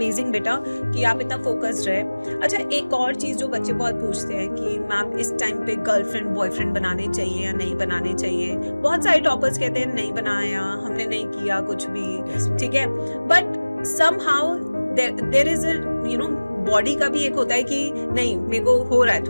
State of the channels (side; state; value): both; inverted; correlation -1.00